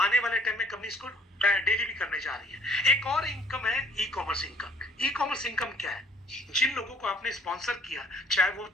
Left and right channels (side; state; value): both; normal; correlation 0.57